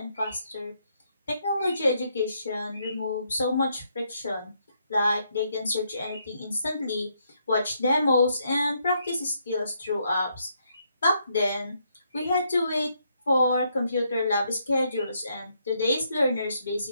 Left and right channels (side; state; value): both; inverted; correlation -0.75